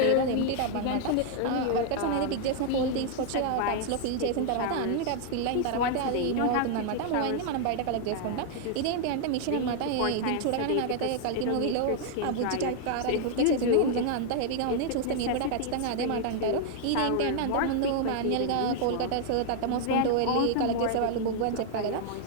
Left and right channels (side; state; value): both; different; correlation 0.00